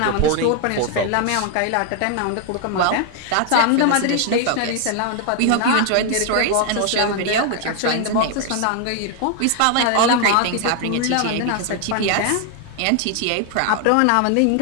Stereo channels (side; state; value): both; different; correlation 0.00